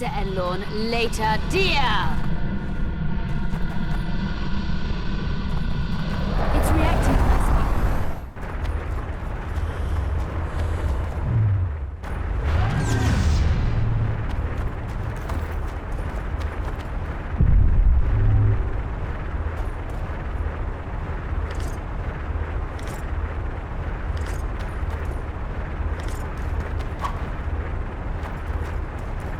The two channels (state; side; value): identical; both; correlation 1.00